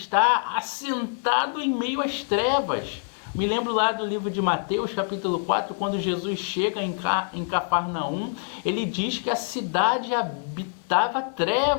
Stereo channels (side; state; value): right; silent; digital silence